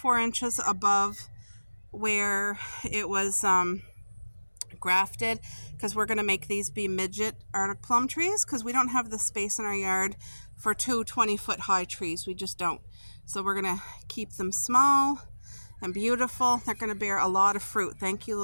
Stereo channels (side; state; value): both; inverted; correlation -1.00